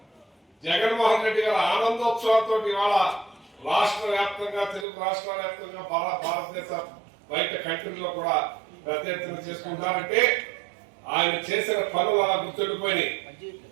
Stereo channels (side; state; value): left; drops out; at 4.9 s